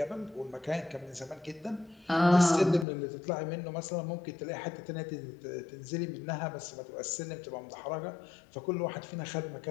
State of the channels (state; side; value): drops out; right; at 2.9 s